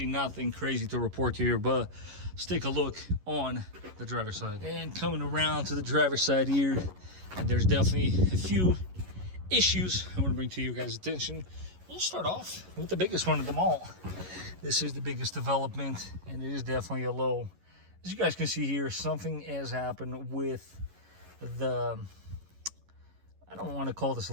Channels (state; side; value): late; left; 11 ms